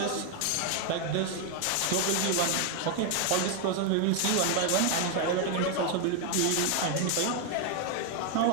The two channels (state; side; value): different; both; correlation 0.00